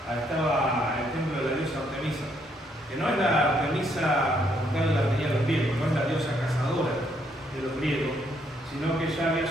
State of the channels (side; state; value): both; normal; correlation 0.72